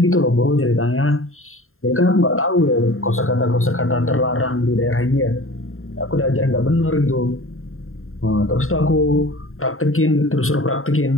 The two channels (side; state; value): right; late; 0.61 ms